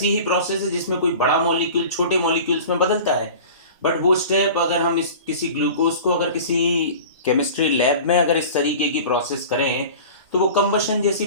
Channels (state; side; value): inverted; both; correlation -0.38